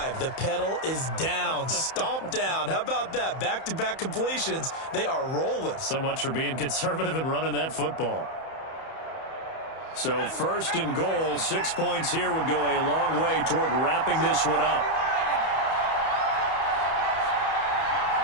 The pedal is down, stomp down. How about that? Back-to-back completions. They are rolling. So much for being conservative and running that football. So first and goal, 6 points here would go a long way toward wrapping this one up.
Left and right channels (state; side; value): late; right; 31 ms